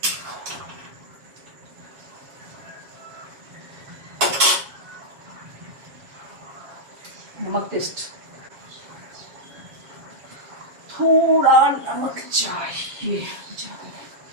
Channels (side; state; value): left; late; 7.2 ms